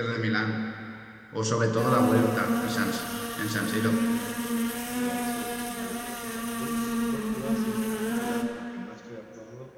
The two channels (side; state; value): both; identical; correlation 1.00